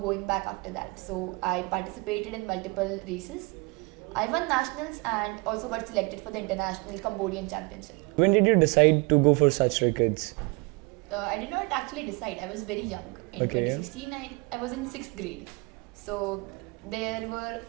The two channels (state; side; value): quieter; left; 28.8 dB